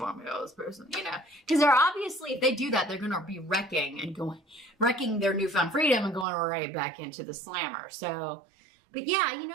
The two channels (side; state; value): left; drops out; at 6.2 s